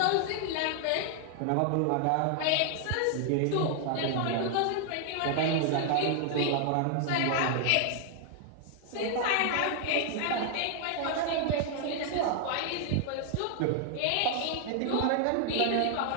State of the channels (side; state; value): both; different; correlation 0.00